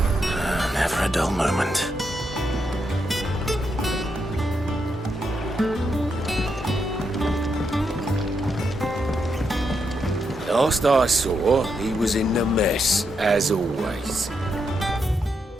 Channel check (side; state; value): both; normal; correlation 0.82